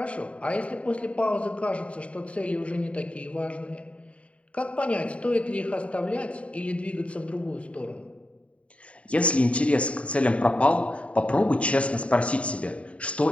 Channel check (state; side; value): late; right; 0.063 ms